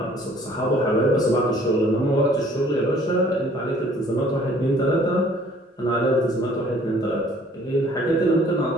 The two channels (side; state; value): both; normal; correlation 0.57